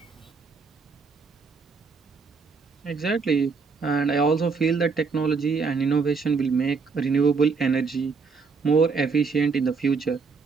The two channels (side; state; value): left; quieter; 4.9 dB